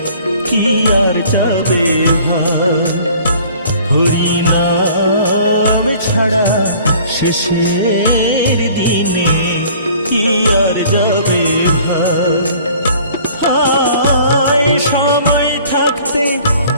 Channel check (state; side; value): inverted; both; correlation -0.52